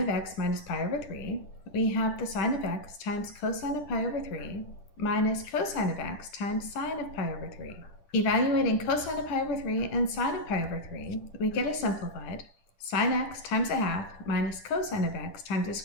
x minus pi over 3, we have the sine of x times cosine of pi over 3 minus cosine of x times sine of pi over 3. Evaluating cosine of pi over 3 and sine of pi over 3, we get a simplified sine x times a half minus cosine of x times the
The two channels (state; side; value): late; right; 10 ms